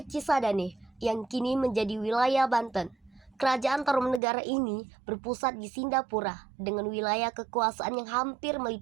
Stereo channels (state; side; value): drops out; left; at 4.2 s